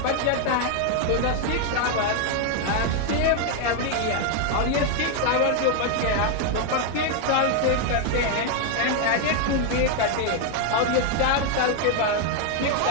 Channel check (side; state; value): both; different; correlation 0.00